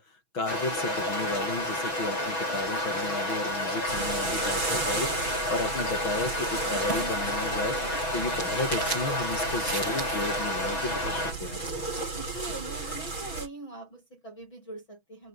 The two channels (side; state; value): right; late; 6.1 ms